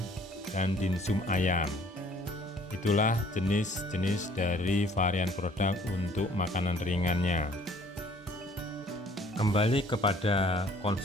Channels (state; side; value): normal; both; correlation 0.57